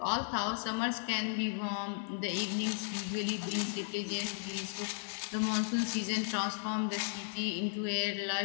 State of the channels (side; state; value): right; silent; 54 dB below the other